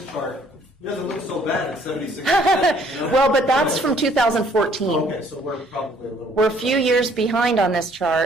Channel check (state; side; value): normal; both; correlation 0.61